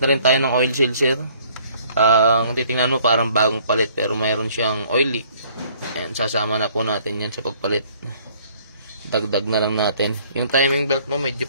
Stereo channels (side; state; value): both; inverted; correlation -0.59